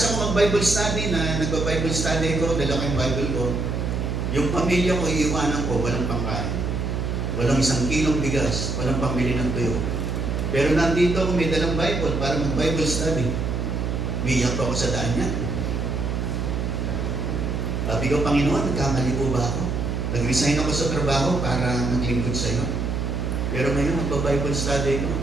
ko mag-Bible study na nagba-Bible study ko, dala ko yung Bible ko. Yung pamilya ko, iiwanan ko, walang pangkain. Walang 1 kilong bigas, walang pambili ng tuyo. Pero nandito ako, may dalang Bible para mag-Bible study. Umiyak pa ako sa daan niya. Sabi ko, Panginoon, nagkamali po ba ako? Nag-resign ako sa trabaho para maglingkod sa iyo. Pero ngayon, magba-Bible study ko.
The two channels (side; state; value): right; noise; hum, 1 dB below the sound